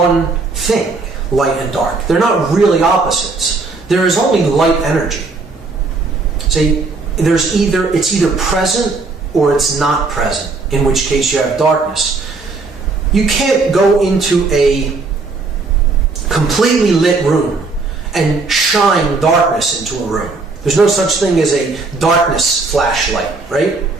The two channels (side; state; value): left; quieter; 3.9 dB